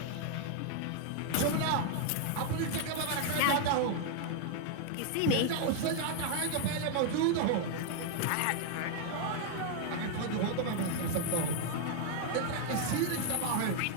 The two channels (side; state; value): both; different; correlation 0.00